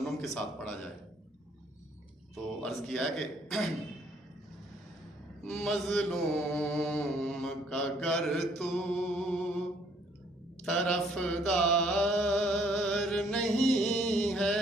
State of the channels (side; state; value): both; normal; correlation 0.64